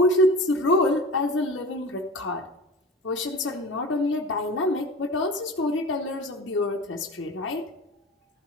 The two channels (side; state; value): both; normal; correlation 0.35